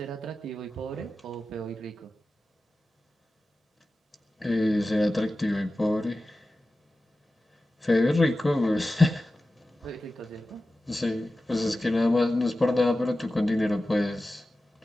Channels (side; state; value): both; normal; correlation 0.94